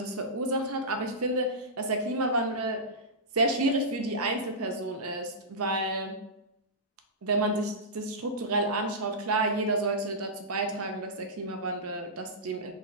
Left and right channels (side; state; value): both; normal; correlation -0.15